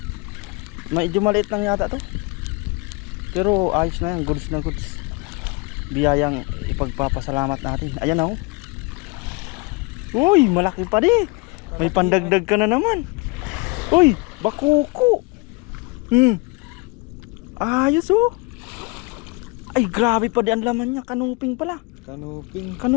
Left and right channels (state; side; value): quieter; right; 27.0 dB